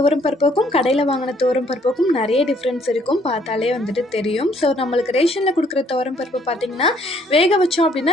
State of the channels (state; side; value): normal; both; correlation 0.64